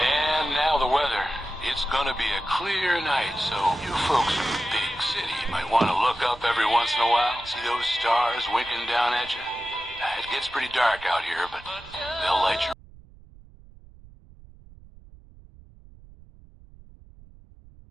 now the weather. It's gonna be a clear night, so you folks in the big city might want to look up every once in a while. See those stars winking down at you? It gets pretty dark out here, but they'll light you.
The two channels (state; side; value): noise; right; rumble, 22 dB below the sound